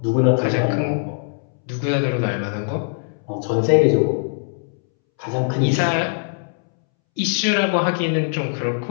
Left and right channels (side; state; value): right; silent; 65 dB below the other